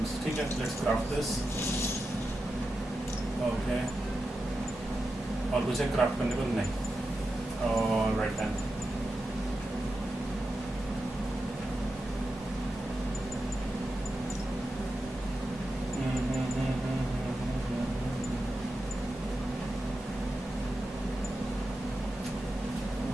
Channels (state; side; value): normal; both; correlation 0.90